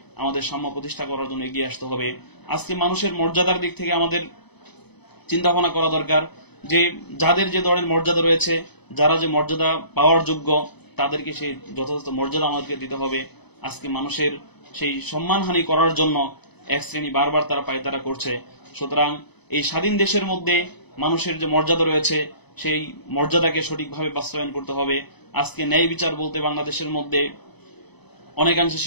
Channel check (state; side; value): late; right; 0.98 ms